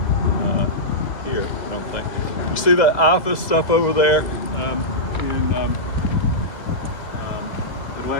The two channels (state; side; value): late; right; 2.0 ms